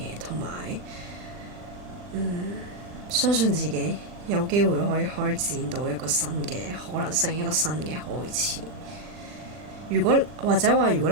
同埋相信自己有機會可以開展到一個新嘅可能性，一個新嘅開始。如果你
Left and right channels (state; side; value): late; left; 40 ms